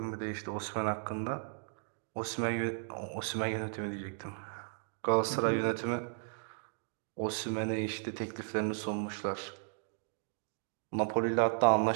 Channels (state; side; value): silent; left; 54 dB below the other